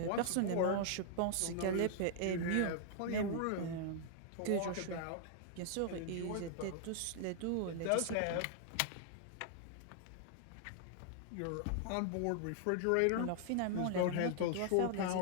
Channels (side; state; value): both; different; correlation -0.01